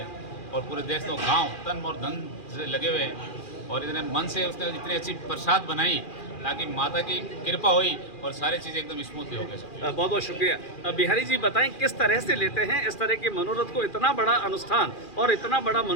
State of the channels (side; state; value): right; late; 2.4 ms